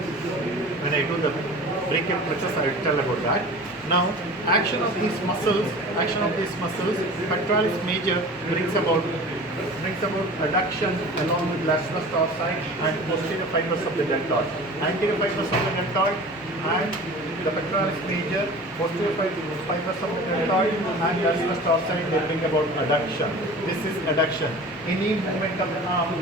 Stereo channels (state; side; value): normal; both; correlation 0.39